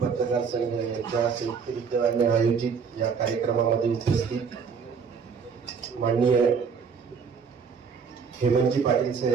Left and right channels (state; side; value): quieter; left; 6.0 dB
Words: संघ यांच्या संयुक्त विद्यमाने आयोजित या कार्यक्रमामध्ये उपस्थित माननीय हेमंतजी पाटील